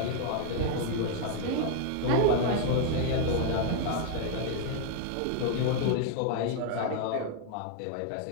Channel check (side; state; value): both; different; correlation 0.00